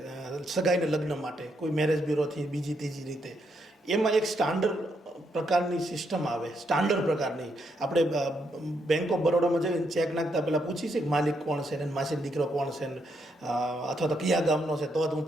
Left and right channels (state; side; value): normal; both; correlation 0.78